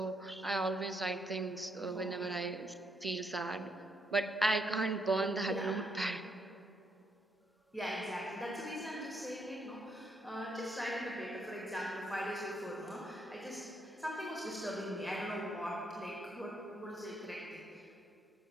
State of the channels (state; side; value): normal; both; correlation 0.75